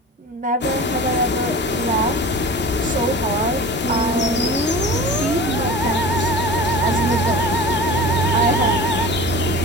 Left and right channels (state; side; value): normal; both; correlation 0.36